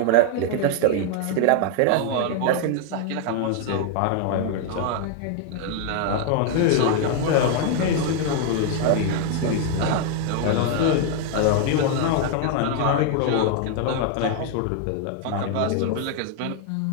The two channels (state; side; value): different; both; correlation 0.00